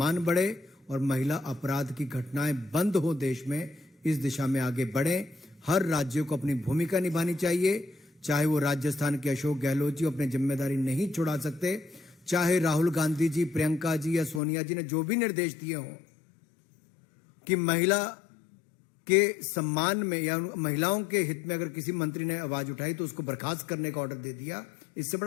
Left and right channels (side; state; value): right; drops out; at 14.4 s